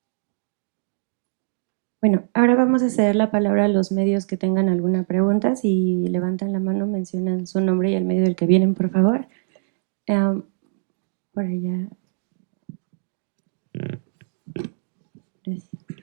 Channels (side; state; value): left; silent; digital silence